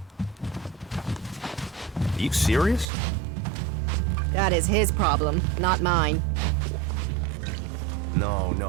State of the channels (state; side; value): drops out; left; at 2.9 s